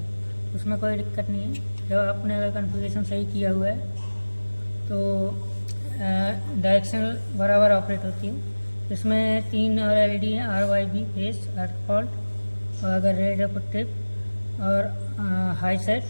उसमें कोई दिक्कत नहीं है। जब आपने अगर कॉन्फ़िगरेशन सही किया हुआ है तो डायरेक्शनल बराबर ऑपरेट होती है। इसमें 3 और LED हैं, RYB फेस, अर्थ फॉल्ट और अगर रेड है ट्रिप और हाई सेट,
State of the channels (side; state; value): both; inverted; correlation -1.00